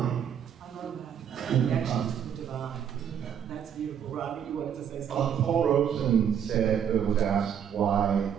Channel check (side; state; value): left; quieter; 8.5 dB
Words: I love that. Connection to the divine. That's beautiful. Rodney, you wanted to say something? Paul Robeson was asked why